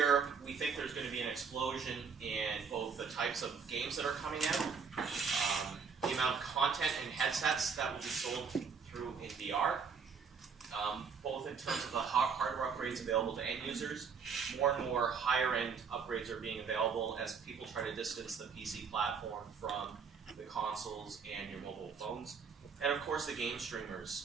we think there's going to be an explosion in both the types of games that are coming out, the amount of content and headsets that will be sold through in VR, both in terms of the hardware upgrades available to end users. More and more higher-end upgrades are being available as people try to distance the PC platform from the consoles and your mobile phones. And of course the game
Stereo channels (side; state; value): left; quieter; 5.8 dB